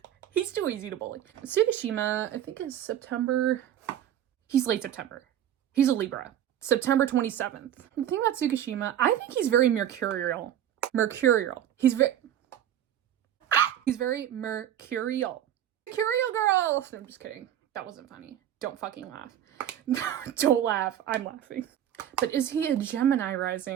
He's too easy to bully. Tsukushima, I think is September. He's late September. He's a Libra. September 27th. The thing about Tsukushima, I think he's very mercurial. He's very mercurial. Mercurial girl! No, I'm just kidding. That wasn't funny. Don't fucking laugh. Don't laugh. I'm laughing. But is he a Gemini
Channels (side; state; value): left; quieter; 10.8 dB